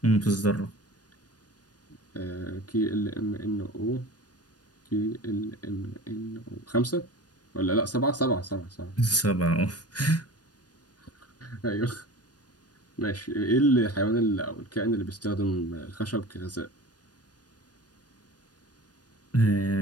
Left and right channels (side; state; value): right; late; 0.69 ms